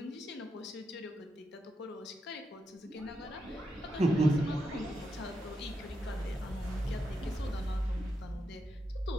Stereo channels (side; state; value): both; normal; correlation 0.84